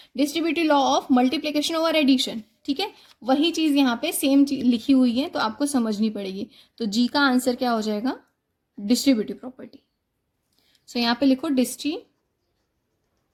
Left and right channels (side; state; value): both; identical; correlation 1.00